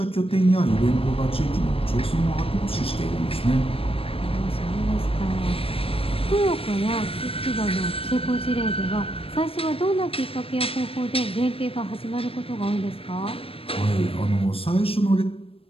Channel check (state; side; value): late; right; 0.27 ms